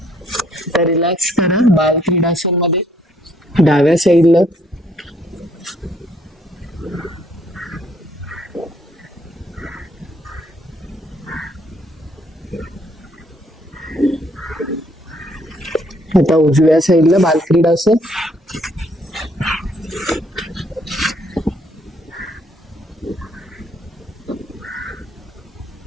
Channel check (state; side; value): normal; both; correlation 0.66